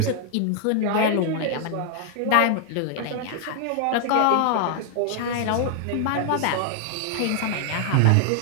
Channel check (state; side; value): different; both; correlation 0.00